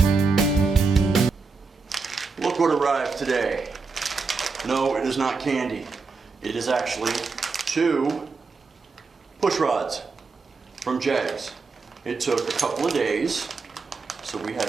Look what arrived today. No, it is not candy. It is actually 2 push rods from Jags. It took a couple of days, so we had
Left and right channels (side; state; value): left; quieter; 4.4 dB